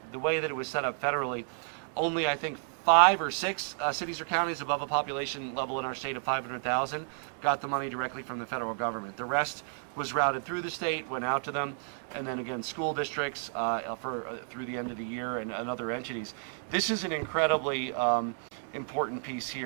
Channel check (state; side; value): silent; left; digital silence